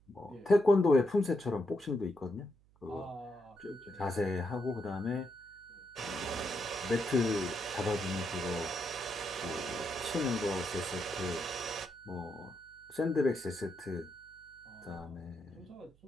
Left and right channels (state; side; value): noise; right; hum, 30 dB below the sound